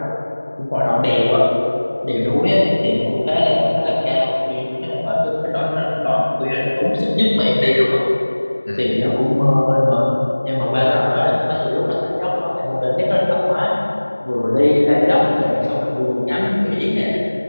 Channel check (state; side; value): inverted; both; correlation -1.00